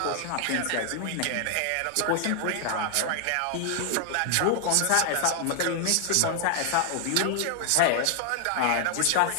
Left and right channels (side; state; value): both; different; correlation 0.00